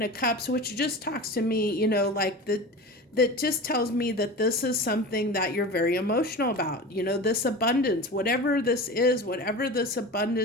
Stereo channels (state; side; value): normal; both; correlation 0.31